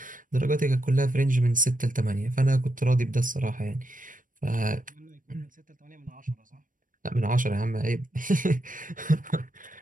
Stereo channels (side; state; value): left; late; 0.39 ms